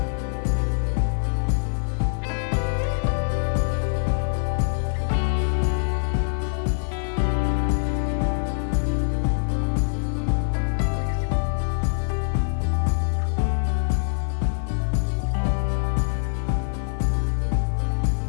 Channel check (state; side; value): silent; right; 63 dB below the other